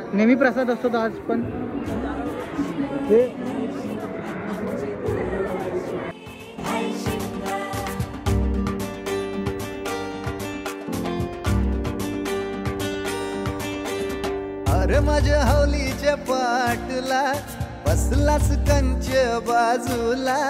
नेहमी प्रसाद असतो आज पण. अरे माझ्या हौलीच्या पाटला बसलास कंच बाजूला,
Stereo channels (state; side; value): identical; both; correlation 1.00